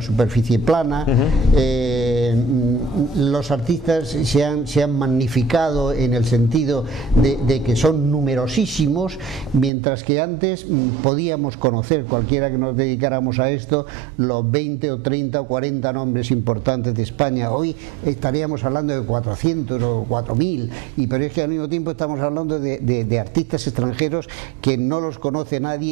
superficie plana. Los artistas se han magnificado en el sentido de que son numerosísimos, mientras que antes podíamos conocer, cualquiera que nos dedicáramos a esto, los 20 o 30 o 40 nombres importantes de España. Hoy estaríamos hablando de 400 o 4000, pero es que al mismo tiempo estamos hablando de artistas extranjeros que no los conoce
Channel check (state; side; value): drops out; left; at 9.7 s